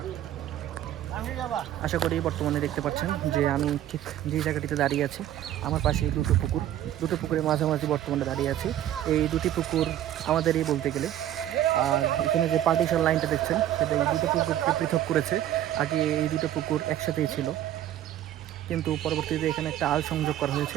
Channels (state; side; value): quieter; left; 12.1 dB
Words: আশা করি বর্তমানে দেখতে পাচ্ছেন যে আমি ঠিক যে জায়গাটিতে দাঁড়িয়ে আছি, আমার পাশে এই দুটো পুকুরের মাঝামাঝি বর্তমানে দাঁড়িয়ে আছি। এই দুটি পুকুর আমাদেরই বলতে গেলে। আর এখানে যে পার্টিশন লাইনটা দেখছেন সেটা এই দুটো পুকুরকে পৃথক করেছে। আগে এই দুটো পুকুর একসাথেই ছিল, কিন্তু পরবর্তীতে এখানে একটা আল সংযোগ করা হয়েছে,